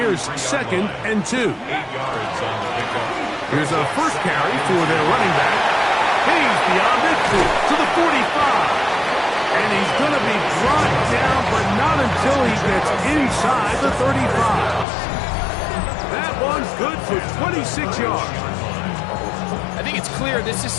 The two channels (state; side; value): drops out; right; at 14.9 s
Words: 2nd and 2. Here's a first carry for their running back. He's beyond it to the 45. And he's going to be brought down, but not until he gets inside the 35. That one's good for 26 yards. I think it's clear this is